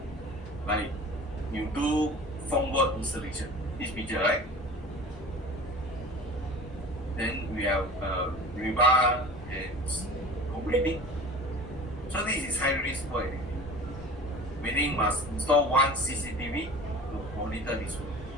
like you do formwork installation, this picture, right? Then we have rebar and completing. So this is high risk for activity, meaning must install one CCTV to monitor this one.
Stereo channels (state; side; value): normal; both; correlation 0.39